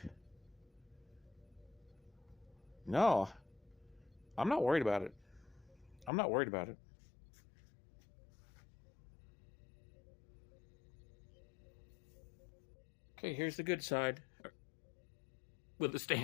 no, I'm not worried about it. I'm not worried about it. Okay, here's the good side with the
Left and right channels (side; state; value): right; drops out; at 6.1 s